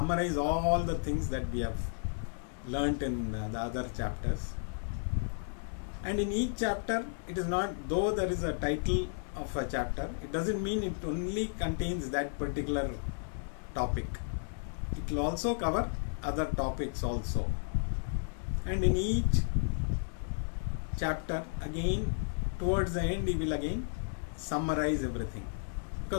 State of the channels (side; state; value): right; silent; 56 dB below the other